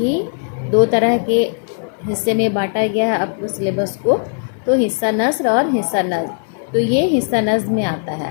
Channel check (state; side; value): silent; right; 67 dB below the other